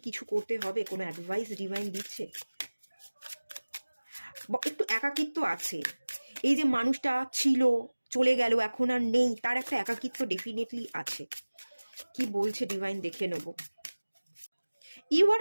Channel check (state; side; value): inverted; both; correlation -1.00